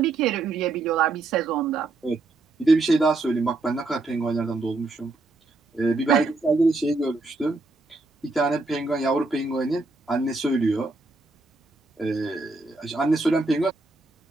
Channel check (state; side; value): quieter; left; 3.3 dB